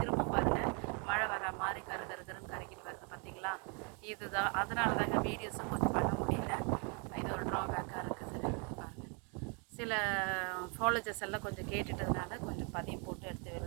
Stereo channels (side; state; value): left; quieter; 35.9 dB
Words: பாருங்கள் மழை வர மாதிரி கருன்னு கரைக்கிட்டு வருது பார்த்தீங்களா. இதுதான் அதனால தான் எங்கள் வீடியோஸும் கொஞ்சம் பண்ண முடியல. இது ஒரு ட்ராபேக்காக இருக்குது பாருங்கள். சில ஃபாலோஜர்ஸ் எல்லாம் கொஞ்சம் கேட்டுட்டதுனால கொஞ்சம் பதியம் போட்டு எடுத்து